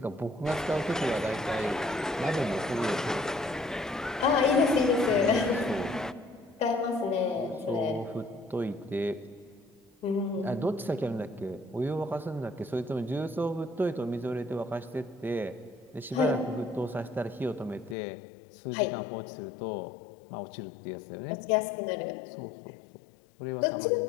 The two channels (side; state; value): right; drops out; at 17.9 s